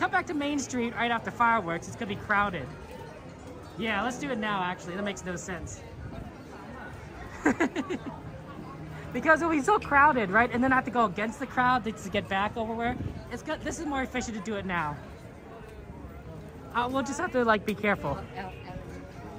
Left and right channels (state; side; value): identical; both; correlation 1.00